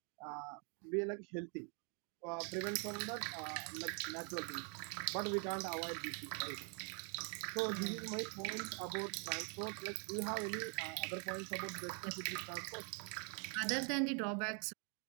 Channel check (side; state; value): left; quieter; 38.7 dB